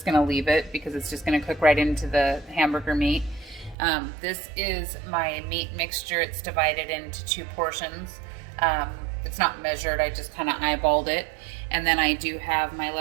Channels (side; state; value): left; drops out; at 3.8 s